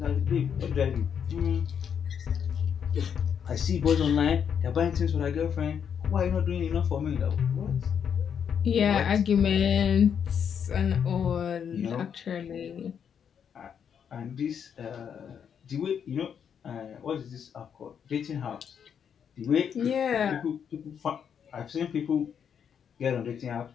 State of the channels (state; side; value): quieter; right; 7.8 dB